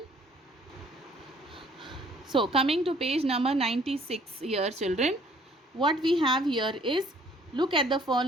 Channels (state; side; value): normal; both; correlation 0.59